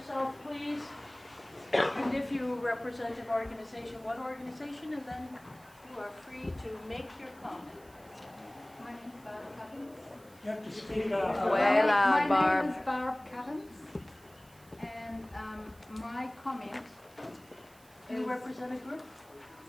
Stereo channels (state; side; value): noise; right; hiss, 26 dB below the sound